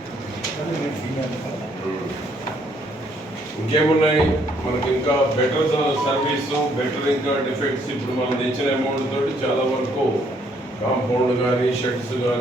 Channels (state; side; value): normal; both; correlation 0.68